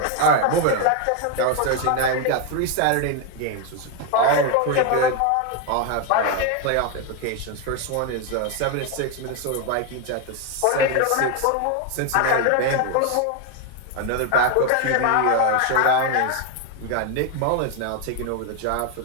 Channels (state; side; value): different; both; correlation 0.01